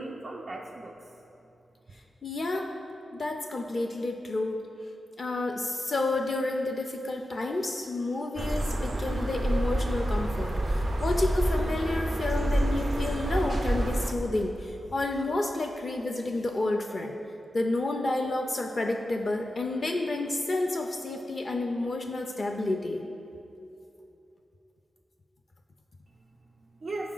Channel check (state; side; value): normal; both; correlation 0.91